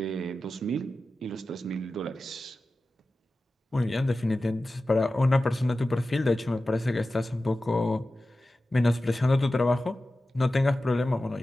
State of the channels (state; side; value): normal; both; correlation 0.94